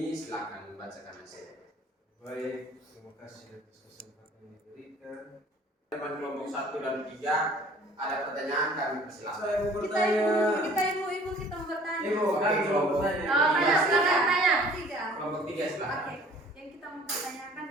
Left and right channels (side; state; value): both; normal; correlation 0.52